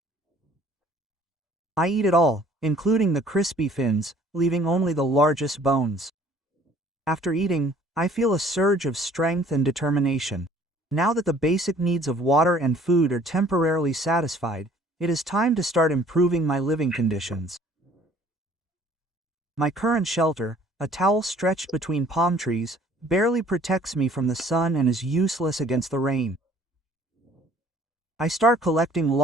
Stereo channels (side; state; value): both; normal; correlation 0.56